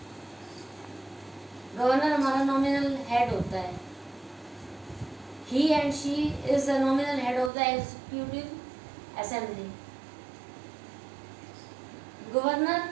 गवर्नर हमारा नॉमिनल हेड होता है। He and she is the nominal head of the executive assembly. Governor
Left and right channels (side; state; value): left; drops out; at 7.5 s